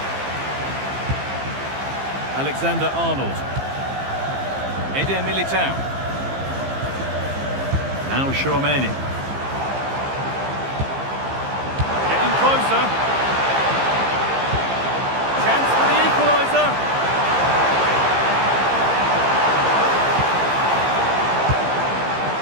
Alexander-Arnold. Eder Militao. Now Tchouaméni. Getting closer. Chance for the equaliser.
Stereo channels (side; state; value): left; late; 15 ms